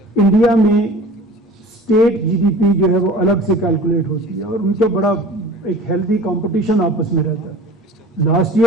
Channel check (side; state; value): both; normal; correlation 0.42